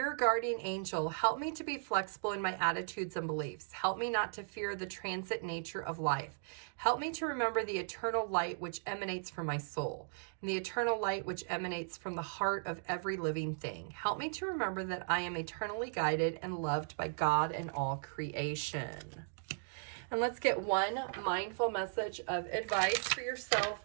guardian angel, help me to be flexible in my attitudes and beliefs. Help me not to fear the transit nature of life. Help me to remember the eternal light which emanates from my soul, and the eternal light which emanates from the heart of every living thing. Help me to remember that I am eternally guided and loved by God and all creation. And let's get one mindful message of advice for yourself,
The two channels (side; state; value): left; silent; digital silence